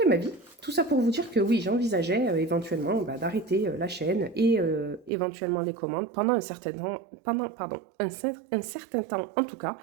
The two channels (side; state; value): left; drops out; at 5.1 s